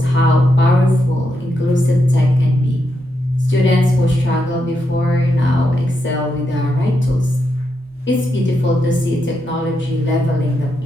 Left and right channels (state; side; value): normal; both; correlation 0.83